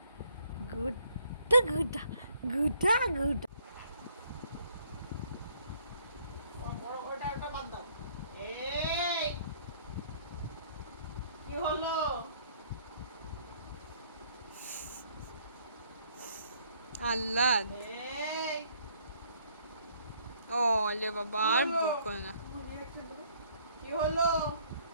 গুড্ডা গুড্ডা গুড্ডা গুড্ডা। বড় ওটা ওটা বাদ দাও। এই কি হলো? আল্লাহ এই ও লে বাবা আর বকো না। কি হলো?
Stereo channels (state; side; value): inverted; both; correlation -0.63